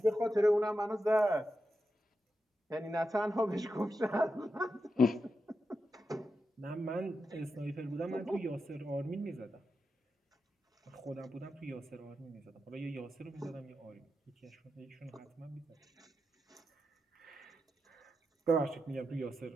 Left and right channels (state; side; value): normal; both; correlation 0.88